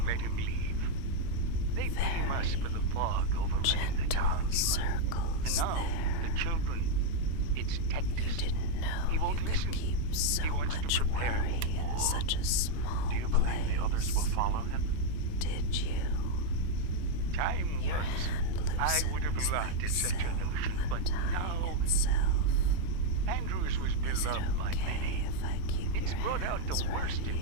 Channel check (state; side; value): different; both; correlation 0.01